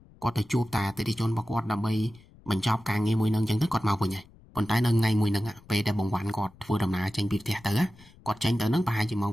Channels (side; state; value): left; noise; rumble, 25 dB below the sound